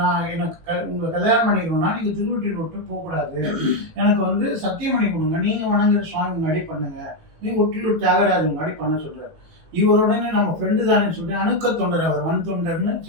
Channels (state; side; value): late; left; 18 ms